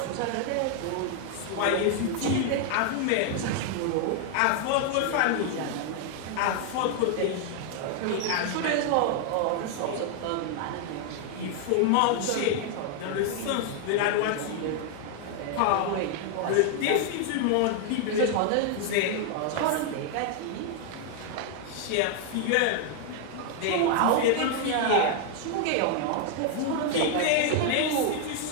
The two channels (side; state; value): both; different; correlation 0.00